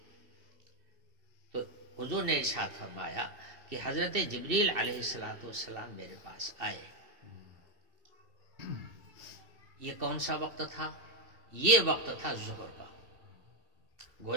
تو حضور نے ارشاد فرمایا کہ حضرت جبریل علیہ السلام میرے پاس آئے. یہ کون سا وقت تھا؟ یہ وقت تھا ظہر کا.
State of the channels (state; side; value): late; left; 2.7 ms